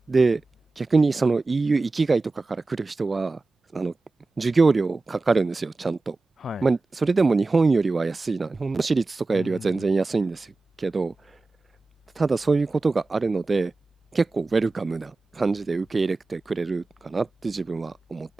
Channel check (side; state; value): left; quieter; 3.6 dB